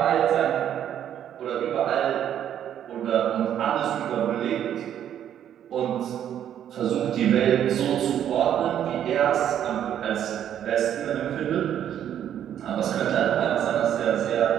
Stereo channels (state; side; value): quieter; left; 10.1 dB